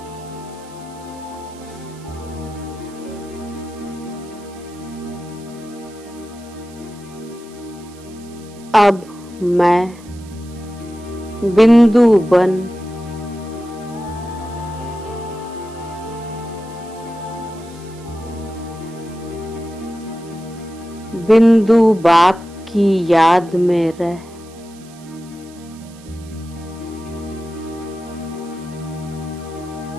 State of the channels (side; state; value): right; noise; hiss, 24 dB below the sound